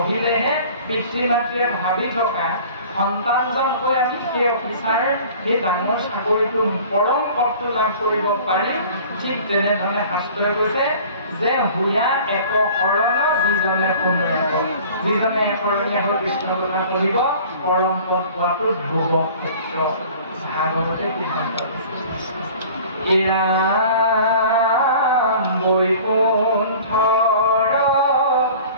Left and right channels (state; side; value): inverted; both; correlation -0.46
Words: পিতৃ মাতৃয়ে ভাবি থকা সন্তানজন হৈ আমি সেই অফিচাৰ সেই ডাঙৰ চাকৰিটো পৰম পদটো লাভ কৰিব পাৰিম। ঠিক তেনেধৰণে শাস্ত্ৰই কৈছে যে হুয়া এক শৰণ যিজনে শুনে, যিজনে একৰণীয়া হৈ কৃষ্ণৰ কথা পঢ়িব পৰম পদ পোৱাটো ধ্ৰুৱ ক্ষেত্ৰ। ভাগৱতে সিদ্ধান্ত এয়া বৈকুণ্ঠৰ